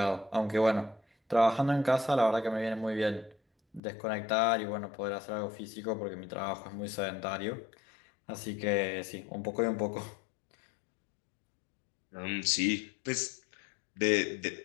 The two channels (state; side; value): drops out; right; at 3.8 s